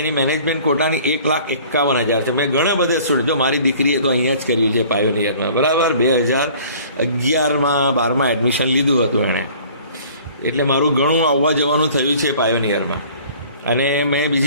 મેનેજમેન્ટ કોટાની 1,51,000 છે. મેં ઘણા બધા સ્ટુડન્ટ, જો મારી દીકરીએ તો અહીંયા જ કર્યું છે પાયોનિયરમાં, બરાબર. 2011માં 12માં એડમિશન લીધું હતું એણે, એટલે મારું ઘણું આવવા જવાનું થયું છે પાયોનિયરમાં. અને મેં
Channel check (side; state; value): both; inverted; correlation -0.50